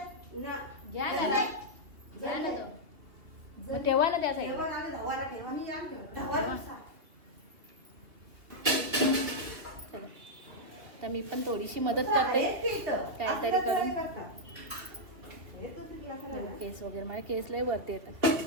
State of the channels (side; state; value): left; late; 3.0 ms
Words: घ्या ना तो, मग ठेवा ना त्या साईडला. चला, तर मी पण थोडीशी मदत करते काहीतरी करून. केस वगैरे मला केस लय वरती येतात.